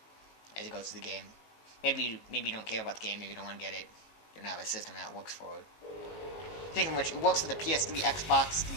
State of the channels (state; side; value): late; right; 18 ms